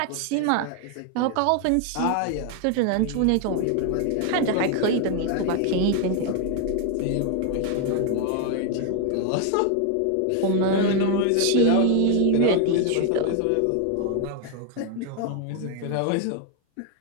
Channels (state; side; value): different; both; correlation 0.01